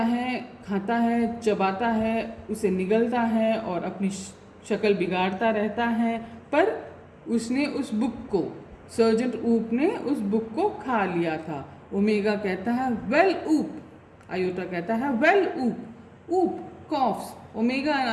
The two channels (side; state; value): both; identical; correlation 1.00